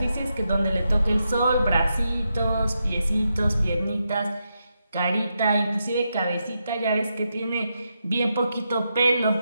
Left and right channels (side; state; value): both; inverted; correlation -0.84